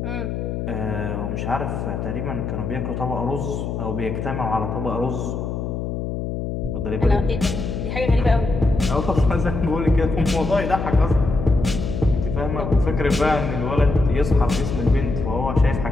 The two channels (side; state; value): left; noise; hum, 4 dB below the sound